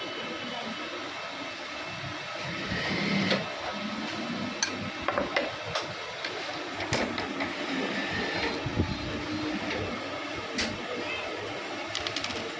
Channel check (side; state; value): both; identical; correlation 1.00